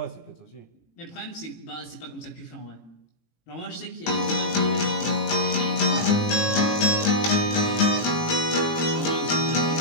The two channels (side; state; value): right; late; 18 ms